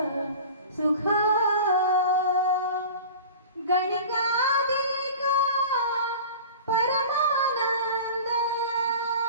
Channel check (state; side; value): inverted; both; correlation -0.37